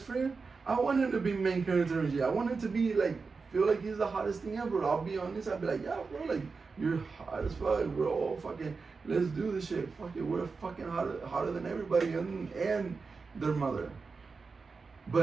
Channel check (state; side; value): quieter; left; 4.6 dB